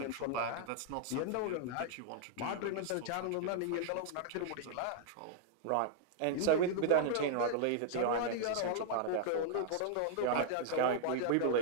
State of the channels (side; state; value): both; different; correlation 0.00